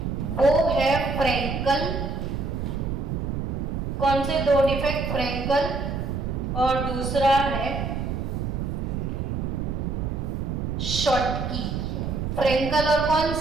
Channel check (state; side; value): noise; right; rumble, 2 dB below the sound